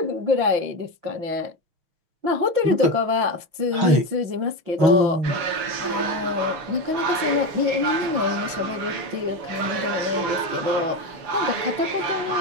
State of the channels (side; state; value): left; late; 5.8 ms